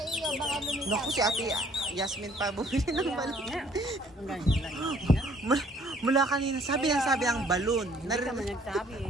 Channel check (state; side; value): normal; both; correlation 0.60